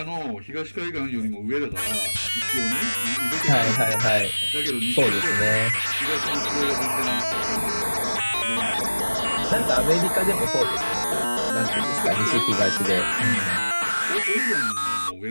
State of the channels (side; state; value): both; inverted; correlation -1.00